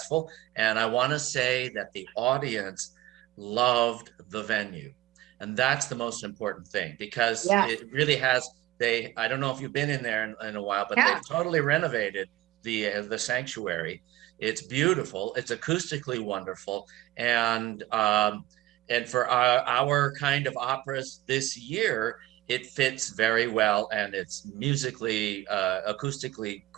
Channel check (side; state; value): left; quieter; 16.1 dB